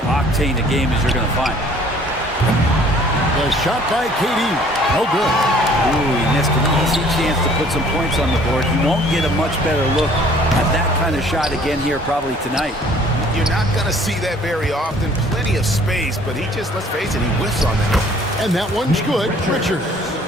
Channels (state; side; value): normal; both; correlation 0.55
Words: a game as you're going to find. The shot by KD. No good. Ooh, he missed an easy chance to put some points on the board. He won't get a much better look at that kind of shot again here probably tonight. You're not going to see that very often. Plenty of space, but he just, let's face it, he whiffs on that. And that one's good. Richards.